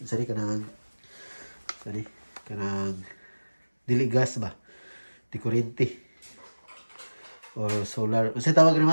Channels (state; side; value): inverted; both; correlation -1.00